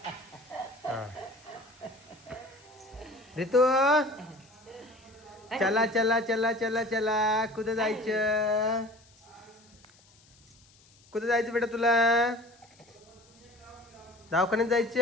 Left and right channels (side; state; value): left; noise; hiss, 28 dB below the sound